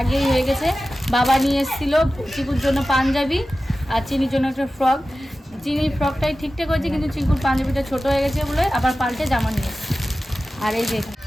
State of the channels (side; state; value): both; normal; correlation 0.95